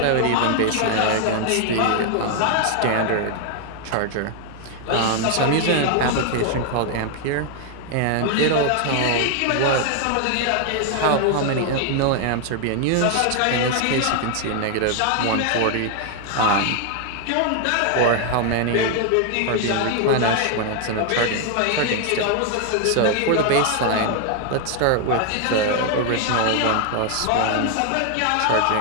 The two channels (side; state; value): both; different; correlation 0.00